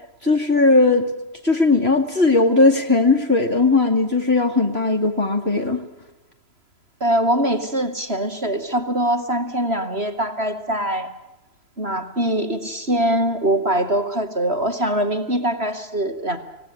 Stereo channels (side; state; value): left; late; 3.0 ms